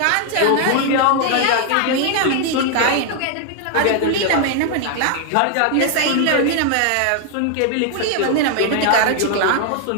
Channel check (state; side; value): different; both; correlation 0.00